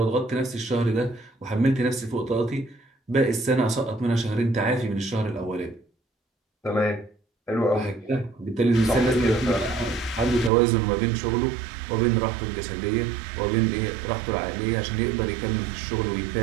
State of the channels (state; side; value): drops out; left; at 10.5 s